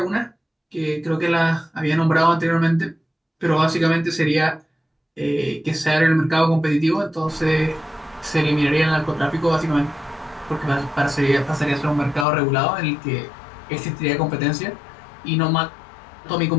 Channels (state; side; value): drops out; right; at 12.2 s